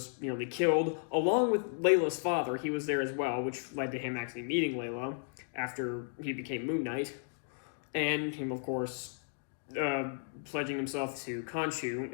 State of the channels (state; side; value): silent; right; digital silence